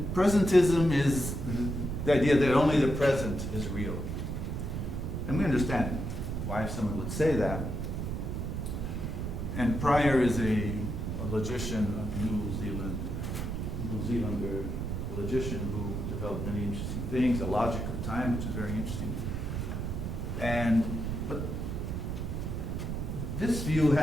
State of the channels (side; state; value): right; noise; rumble, 3 dB below the sound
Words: Presentism is the idea that only the present is real. And we understand why someone would say that. And Pryor is a logician, a New Zealander logician who developed many interesting things, a logic of time, which is very interesting. But this view